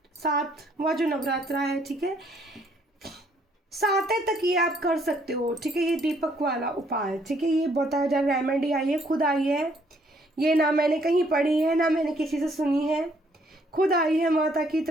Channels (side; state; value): both; normal; correlation 0.66